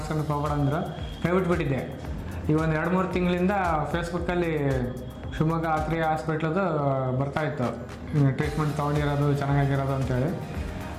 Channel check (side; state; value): both; identical; correlation 1.00